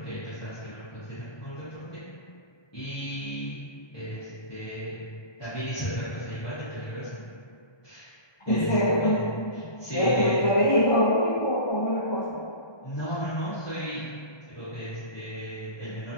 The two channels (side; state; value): right; late; 1.2 ms